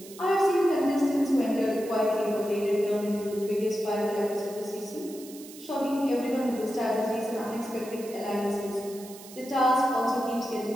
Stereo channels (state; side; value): noise; right; hiss, 17 dB below the sound